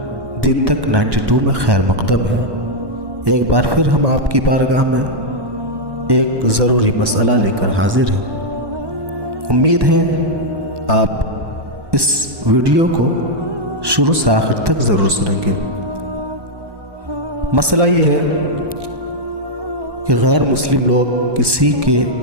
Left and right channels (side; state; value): left; late; 1.2 ms